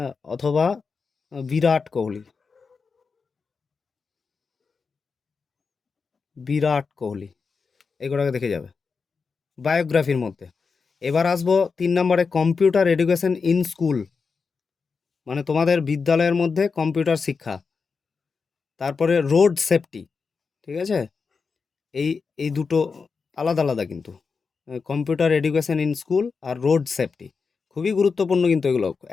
অথবা বিরাট কোহলি। বিরাট কোহলি এগুলোকে দেখে যাবে বায়োগ্রাফির মধ্যে। এবার আসবো 3 নম্বরে, কম্পিউটার এডুকেশন ইন স্কুল মানে তোমাদের বিদ্যালয়ের মধ্যে কম্পিউটার শিক্ষা। তারপরে রোড সেফটি, ঠিক আছে? এই এই দুটো আলাদা আলাদা কিন্তু, কম্পিউটার এডুকেশন ইন স্কুল আর রোড সেফটি খুবই গুরুত্বপূর্ণ কিন্তু, এগুলো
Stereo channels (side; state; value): right; quieter; 5.1 dB